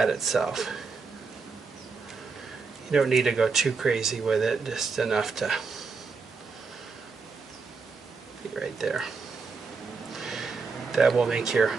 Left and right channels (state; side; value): quieter; left; 4.8 dB